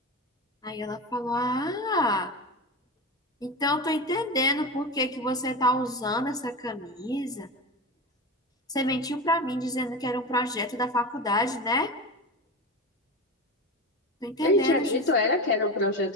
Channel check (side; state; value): both; normal; correlation 0.24